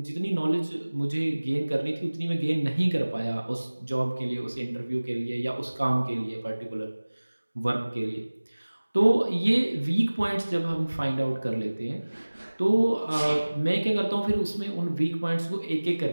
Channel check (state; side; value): inverted; both; correlation -1.00